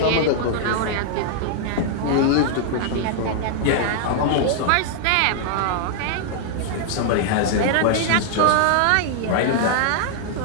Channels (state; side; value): different; both; correlation -0.01